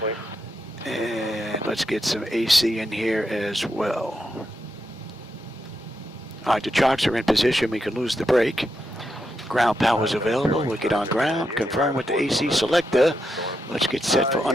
And let's get some AC in here as well. All right, the chocks are in position. We can lose the brake. Ground power is available. We'll get on ground. Confirm with the AC selector. Let's get set for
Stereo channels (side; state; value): both; normal; correlation 0.84